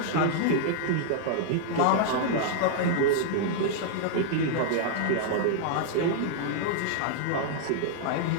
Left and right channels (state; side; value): different; both; correlation -0.01